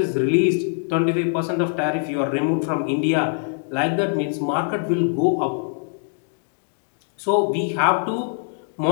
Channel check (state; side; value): silent; right; 64 dB below the other